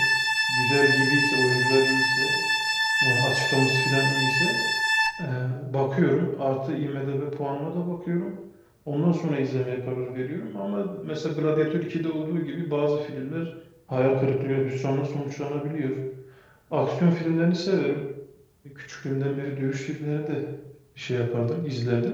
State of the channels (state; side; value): identical; both; correlation 1.00